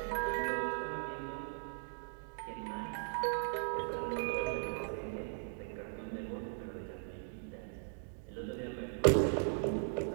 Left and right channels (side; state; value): left; silent; digital silence